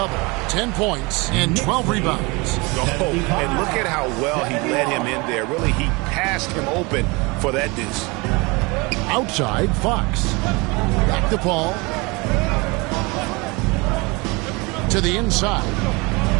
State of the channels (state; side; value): quieter; left; 26.3 dB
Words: 10 points and 12 rebounds. Oh, and look at how well he led him in there. Really, he passed him open for that deuce. Outside, Fox. Back to Paul. To the inside.